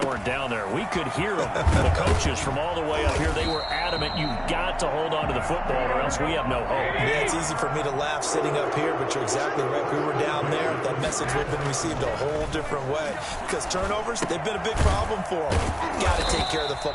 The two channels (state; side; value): identical; both; correlation 1.00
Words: weren't down there. We could hear them. The coaches from all the way up here, they were adamant, you've got to hold on to the football or else we have no hope. Yeah, it's easy for me to laugh sitting up here, but you're exactly right. We were down there. That message would have been received a whole different way, because turnovers, they've been a big problem for them. Got to take care of the